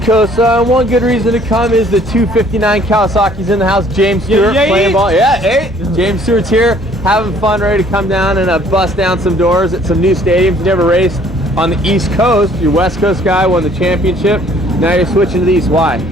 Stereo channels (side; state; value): both; normal; correlation 0.58